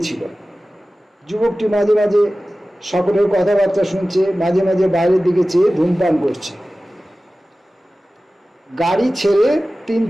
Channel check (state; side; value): normal; both; correlation 0.96